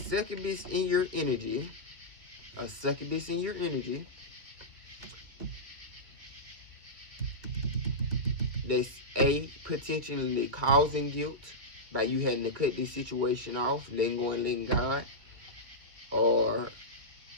in your energy. A succubus in your energy. That's potentially causing guilt by you having to cut this situation off, letting go and letting God. Or,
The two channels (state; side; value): late; left; 2.1 ms